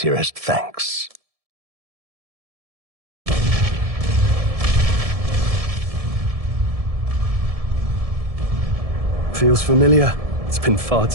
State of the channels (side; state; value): left; late; 1.7 ms